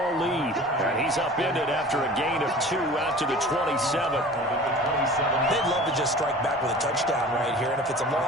lead. And he's upended after a gain of 2 out to the 27. They'd love to just strike back with a touchdown right here, and if it's a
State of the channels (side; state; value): both; normal; correlation 0.41